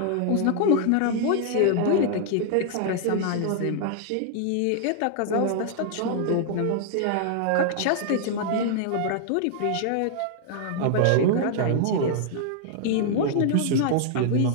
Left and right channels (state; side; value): different; both; correlation -0.01